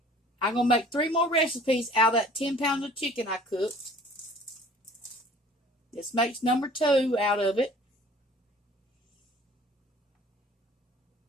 going to make 3 more recipes out of that 10 pounds of chicken I cooked. This makes number 2 out of it.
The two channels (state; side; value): normal; both; correlation 0.50